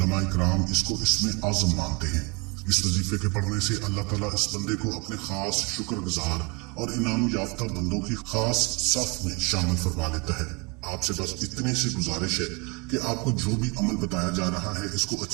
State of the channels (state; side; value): quieter; left; 29.9 dB